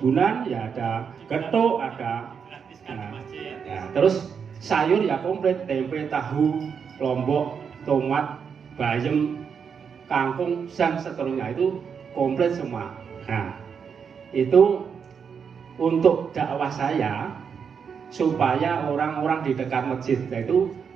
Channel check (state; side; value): quieter; left; 6.6 dB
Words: ya ada getuk, ada ya, terus sayur ya komplit, tempe, tahu, lombok, tomat, bayam, kangkung, dan seterusnya itu komplit semua. Nah, itu untuk dakwah saya supaya orang-orang di dekat masjid itu